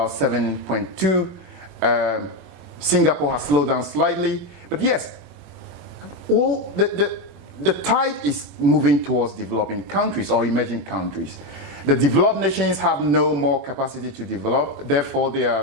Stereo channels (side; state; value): left; late; 23 ms